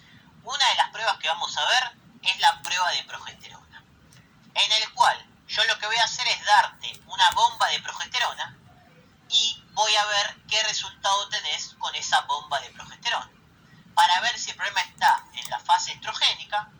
Una de las pruebas que vamos a ver es la prueba de progesterona, en el cual yo lo que voy a hacer es darte una bomba de progesterona y voy a ver qué resultado tenés con esa bomba de progesterona, para ver si el problema está en la fase estrogénica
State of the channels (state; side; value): identical; both; correlation 1.00